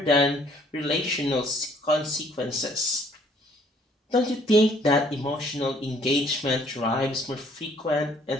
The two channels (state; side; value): normal; both; correlation 0.61